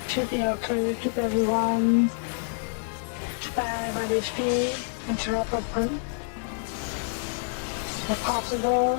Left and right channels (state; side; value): silent; right; digital silence